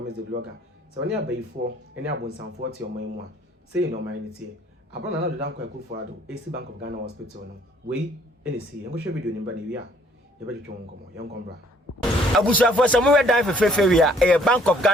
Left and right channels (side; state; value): both; normal; correlation 0.61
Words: the blogger so oni abayifo ene abonsanfo ti oman mu a say no man tie abana na do dan kwa kufu ado AC Bank of Ghana Hospital no we ene si enko hwe video ni ba na wi a ye ba twetwe nkomo ye nkombra abusuafo samuwe dan fefefe a Bank of